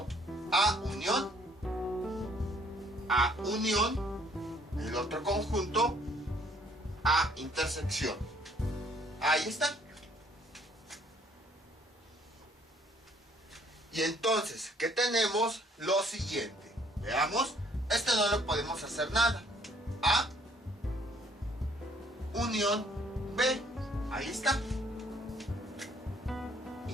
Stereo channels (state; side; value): normal; both; correlation 0.63